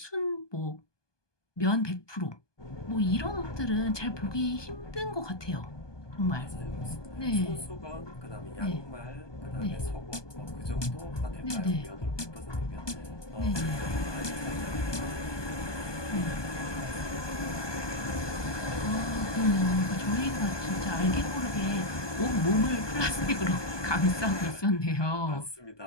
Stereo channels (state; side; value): late; right; 1.2 ms